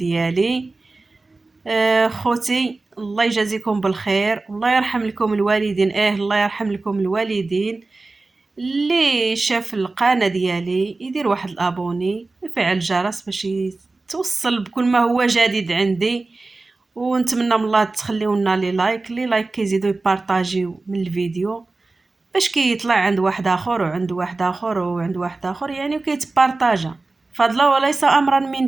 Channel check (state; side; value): quieter; left; 3.4 dB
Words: خوتي، الله يجازيكم بالخير والله يرحم لكم الوالدين. الله يرحم لكم الوالدين. اللي شاف القناه ديالي يدير واحد الابوني ويفعل الجرس باش توصل بكل ما هو جديد عندي، ونتمنى من الله تخليونا لي لايك كيزيدوا يبارطاجيو من الفيديو باش كيطلع عند واحد اخر وعند واحد اخر وعند واحد اخر، يعني وكيتبارطاجا فضلا وليس امرا